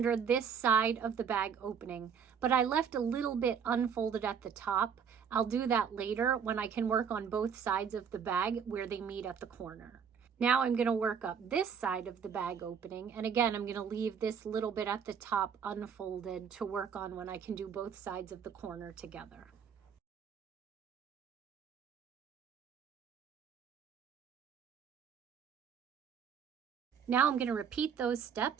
this side of the bag opening, but I left a little bit unfolded at the top. I'll do that later when I can work on both sides of the bag where they meet at the corner. Now I'm going to work up this side of the bag opening, and again I'm going to leave this little bit at the top unfolded to work on when I can do both sides of the corner together. Now I'm going to repeat those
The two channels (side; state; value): left; quieter; 7.2 dB